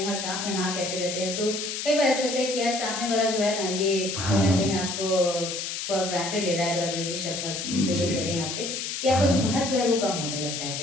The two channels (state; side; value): noise; left; hiss, 4 dB below the sound